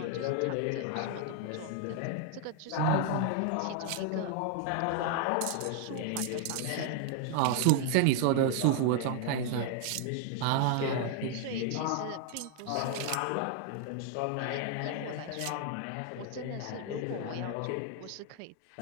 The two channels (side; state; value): both; different; correlation 0.00